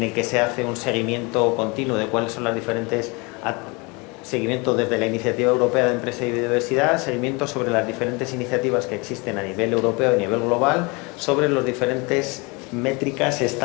el que se hace un seguimiento continuo de cuáles son las diferentes seguimiento desde la Iniciativa Europea de Empresa y Biodiversidad, seguimiento sobre las diferentes iniciativas que existen a nivel europeo y a nivel global, sobre los diferentes métricas,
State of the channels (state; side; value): quieter; right; 28.0 dB